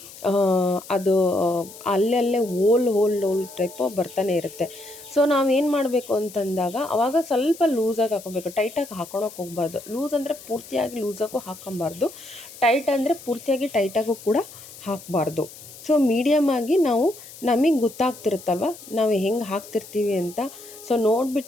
ಅದು ಅಲ್ಲಲ್ಲೇ ಹೋಲ್ ಟೈಪು ಬರ್ತಾನೆ ಇರುತ್ತೆ. ಸೊ ನಾವೇನು ಮಾಡಬೇಕು ಅಂತಂದಾಗ ಅವಾಗ ಸ್ವಲ್ಪ ಲೂಸಾಗಿ ಹಾಕ್ಕೊಬೇಕು, ಟೈಟಾಗಿ ಹಾಕೊಳಕ್ಕೆ ಹೋಗಬಾರ್ದು. ಲೂಸ್ ಅಂದರೆ ಪೂರ್ತಿಯಾಗಿ ಲೂಸಾಗೂ ಹಾಕ್ಕೊಬಾರ್ದು, ಟೈಟ್ ಅಂದರೆ ಪೂರ್ತಿಯಾಗಿ ಟೈಟಾಗೂ ಕೂಡ ಹಾಕಬಾರ್ದು. ಸೊ ಮೀಡಿಯಮಾಗಿ ನಾವು ನಮಗೆ ಗೊತ್ತಾಗ್ತಿರುತ್ತಲ್ವ ನಾವು ಹೆಂಗೆ ಹಾಕ್ತಿರ್ತೀವಿ ಅಂತ. ಸೊ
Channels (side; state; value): left; noise; hiss, 17 dB below the sound